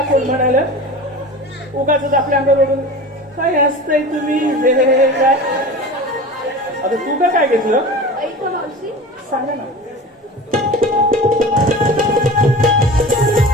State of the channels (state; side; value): normal; both; correlation 0.34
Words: कोण म्हणालं उगाच आपल्या अंगावरून काय असतंय तुम्ही हे काय अगं तू का काय घेतलं ऐक ना मावशी सांगा ना